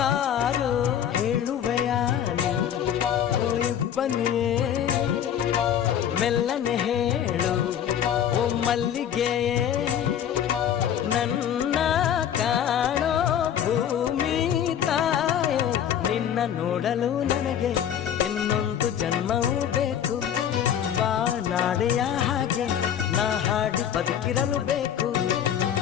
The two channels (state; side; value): quieter; right; 9.5 dB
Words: ಹೇಳುವೆಯಾ ಬನ್ನಿಯೇ ಮೆಲ್ಲನೆ ಹೇಳು ಓ ಮಲ್ಲಿಗೆಯೇ, ನನ್ನ ಕಾಣೋ ಭೂಮಿ ತಾಯೇ, ನಿನ್ನ ನೋಡಲು ನನಗೆ ಇನ್ನೊಂದು ಜನ್ಮವೂ ಬೇಕು, ಬಾನಾಡೆಯ ಹಾಗೆ ನಾ ಹಾಡಿ ಬದುಕಿರಲು ಬೇಕು,